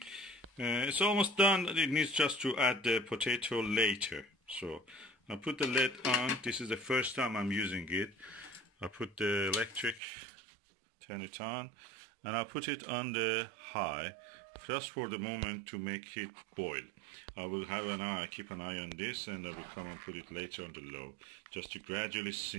It's almost done. It needs just to add the potato later. So I put the lid on. This is the first time I'm using it. I put the electric, turn it on, and I put it on the high just for the moment to make it boil. I will have an eye, keep an eye on this, and I will come and put it later on the low just to gradually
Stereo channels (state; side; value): drops out; left; at 10.0 s